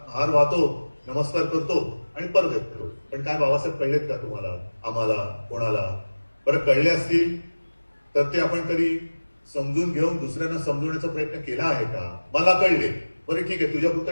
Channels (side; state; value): both; inverted; correlation -1.00